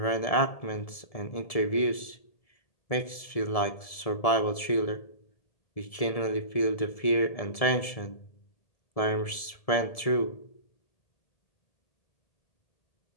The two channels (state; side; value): late; right; 1.7 ms